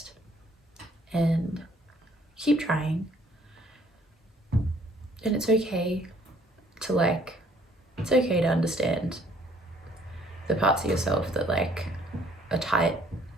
and keep trying. And it's okay to like, it's okay to understand the parts of yourself that like are tight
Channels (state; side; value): normal; both; correlation 0.61